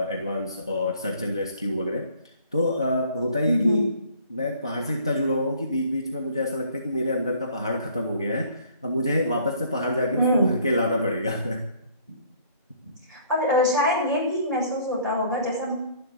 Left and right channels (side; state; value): both; inverted; correlation -0.57